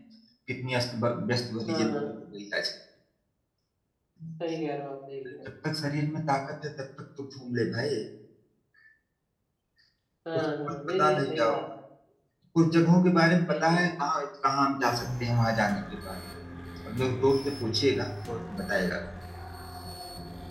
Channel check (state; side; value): identical; both; correlation 1.00